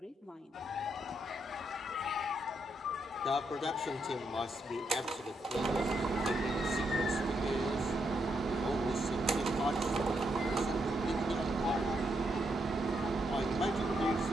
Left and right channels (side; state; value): both; normal; correlation 0.79